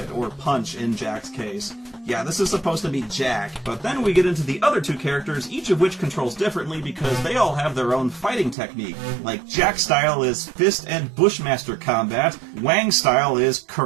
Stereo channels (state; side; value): drops out; left; at 8.6 s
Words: or punch in Jack's case. Yeah, this is supposed to be Jack, but then we get into the other two characters, each of which controls differently because they all have their own fighting technique. Like, Jack's style is fist and bushmaster combat, Wang's style is